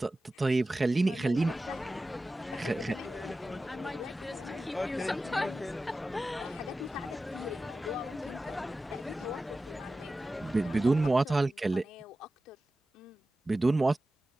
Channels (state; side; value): normal; both; correlation 0.94